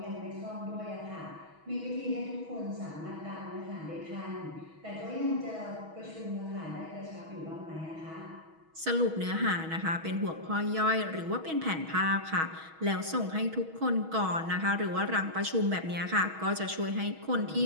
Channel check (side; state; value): left; late; 6.3 ms